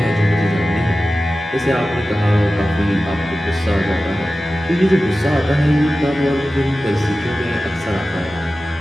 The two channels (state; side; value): normal; both; correlation 0.95